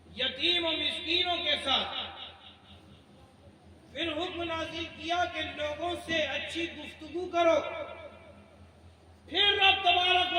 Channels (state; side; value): identical; both; correlation 1.00